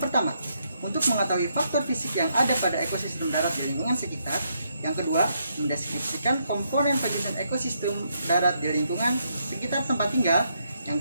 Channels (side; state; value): both; inverted; correlation -0.76